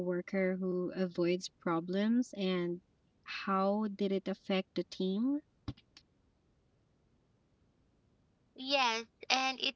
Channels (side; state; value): both; identical; correlation 1.00